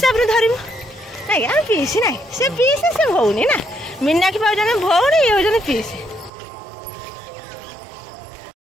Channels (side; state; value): left; drops out; at 6.3 s